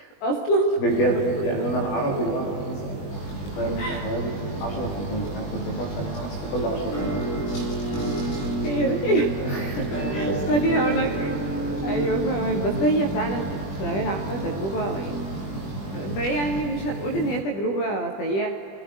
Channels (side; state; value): right; late; 20 ms